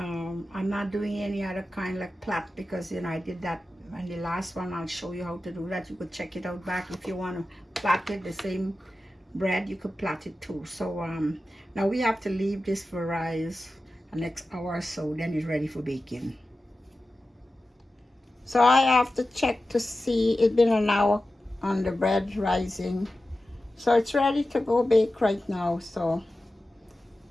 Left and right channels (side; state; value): both; normal; correlation 0.94